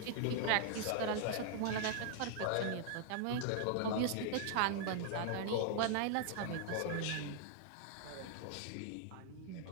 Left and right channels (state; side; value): different; both; correlation 0.00